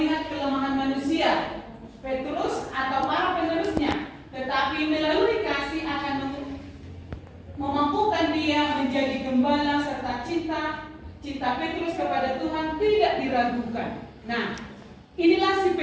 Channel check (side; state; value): both; identical; correlation 1.00